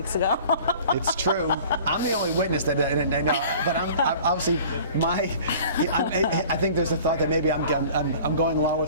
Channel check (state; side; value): inverted; both; correlation -0.46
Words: ago. It's true. I'm the only witness that I know, but I'm obviously I think there's a thought that maybe I'm going along